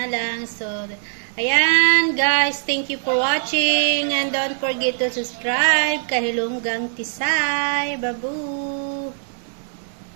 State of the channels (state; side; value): silent; left; 65 dB below the other